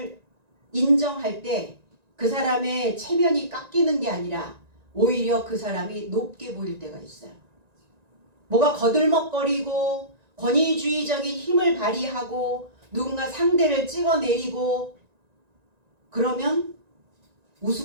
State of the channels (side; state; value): left; late; 1.9 ms